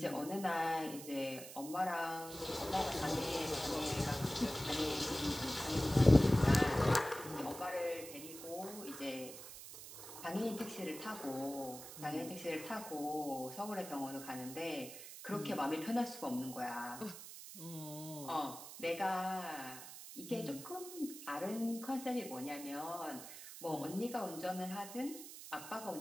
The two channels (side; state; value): right; noise; hiss, 12 dB below the sound